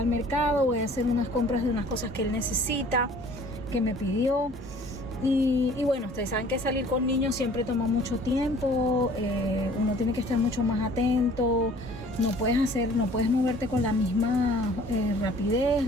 mercado, voy a hacer unas compras de unas cosas que él necesita, que me pidió. Y bueno, ustedes saben que salir con niños siempre toma mucho tiempo, uno tiene que estar mucho más atento, no puedes moverte con la misma rapidez,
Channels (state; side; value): normal; both; correlation 0.52